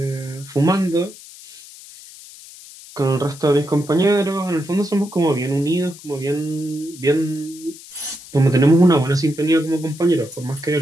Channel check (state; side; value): noise; left; hiss, 18 dB below the sound